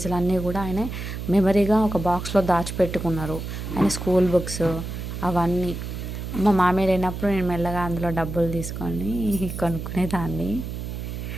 అన్నీ కూడా ఆయన మెమరీగా ఒక బాక్స్లో దాచిపెట్టుకున్నారు. ఆయన స్కూల్ బుక్స్ అవన్నీ. మా మామయ్య లేనప్పుడు నేను మెల్లగా అందులో డబ్బులు తీసుకొని కొనుక్కునేదాన్ని.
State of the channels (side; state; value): right; noise; hum, 6 dB below the sound